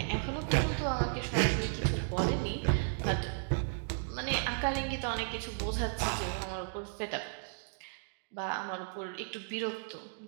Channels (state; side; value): silent; left; digital silence